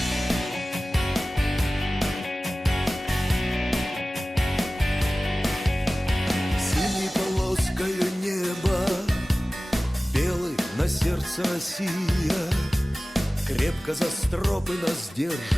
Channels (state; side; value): normal; both; correlation 0.97